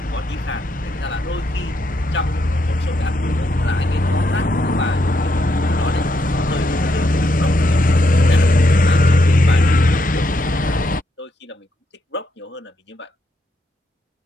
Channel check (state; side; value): normal; both; correlation 0.79